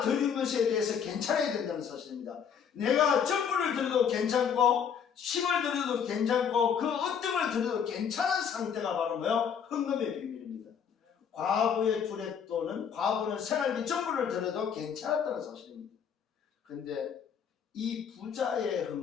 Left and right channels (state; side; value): quieter; right; 7.4 dB